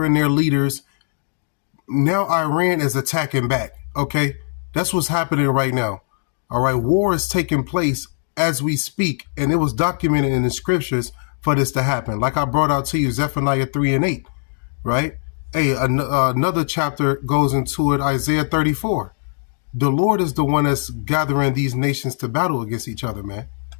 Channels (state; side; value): silent; right; digital silence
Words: their leaders. Now Iran is attacking back. Okay, that's what's happening right now. All right, war is taking place as we speak, and it was documented in the scriptures for this to happen. Like I brought out to you, Zephaniah 3:8, right? Hey, another chapter goes into it, Isaiah 34. The Lord is the one that's gathering these nations to battle against each other, man.